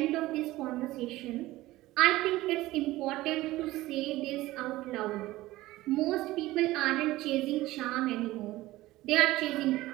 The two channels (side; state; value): left; quieter; 17.5 dB